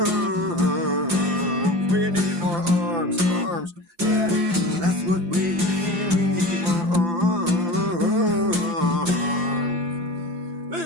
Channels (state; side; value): late; left; 4.8 ms